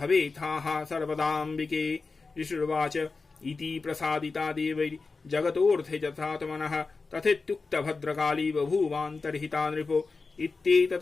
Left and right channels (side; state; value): right; quieter; 4.2 dB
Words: सर्वदाम्बिके। ऋषिर्वाच इति प्रसादिता देवैर्जगतोऽर्थे यथात्मनः तथेत्युक्तभद्रकाली बभूवान्तर्हिता नृपो